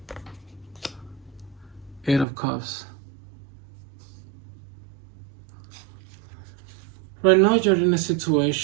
Eight of Cups. Right now you're in a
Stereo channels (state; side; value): drops out; left; at 2.2 s